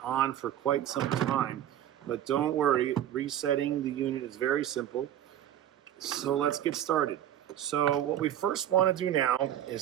on for quite some time. But don't worry, resetting the unit is very simple. So let's get started. So what we first want to do now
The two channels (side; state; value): left; quieter; 11.3 dB